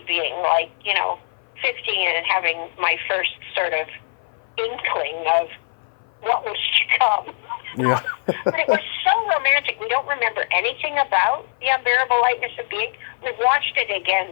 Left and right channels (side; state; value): right; silent; 58 dB below the other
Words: being like, 15 and having my first sort of inkling of what was to come. Yeah. But it was so romantic. We don't remember anything about The Unbearable Lightness of Being. We've watched it